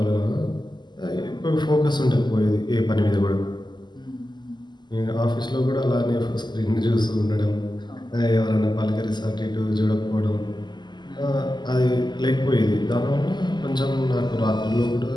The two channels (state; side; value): late; right; 0.21 ms